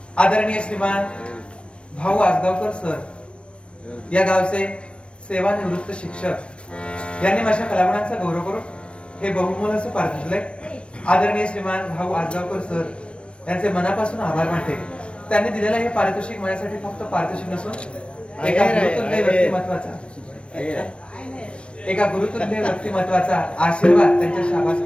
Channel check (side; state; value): right; late; 0.059 ms